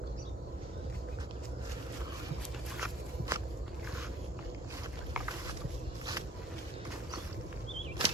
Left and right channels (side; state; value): both; normal; correlation 0.55